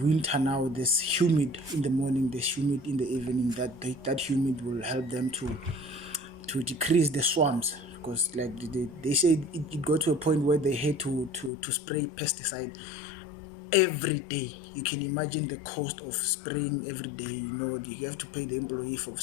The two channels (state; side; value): drops out; right; at 11.5 s